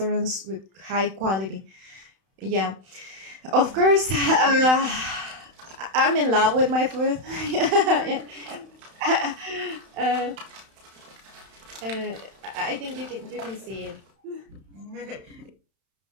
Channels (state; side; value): late; left; 31 ms